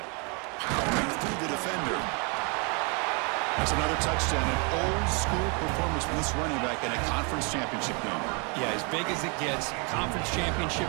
it. Powering through the defender. That's another touchdown. An old-school performance for this running back in a conference championship game. Yeah, as big as it gets, conference championship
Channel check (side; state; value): left; quieter; 34.1 dB